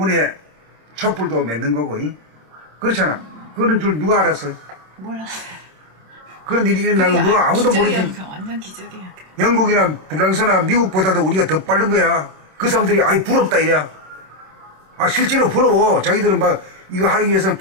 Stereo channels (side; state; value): left; late; 27 ms